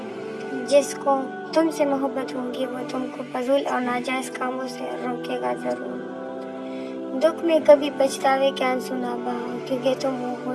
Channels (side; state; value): both; identical; correlation 1.00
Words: جس کو تم سے محبت ہوگی وہ تم کو فضول اور ناجائز کاموں سے روکے گا ضرور۔ دکھ میں کبھی پچھتاوے کے آنسو نہ بہاؤ، کیونکہ تم وہ